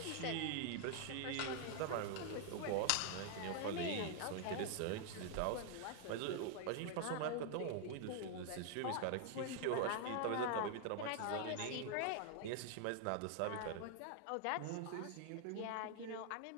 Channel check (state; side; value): different; both; correlation 0.00